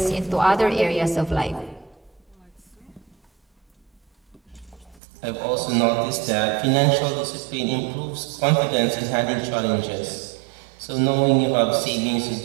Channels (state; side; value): drops out; left; at 5.0 s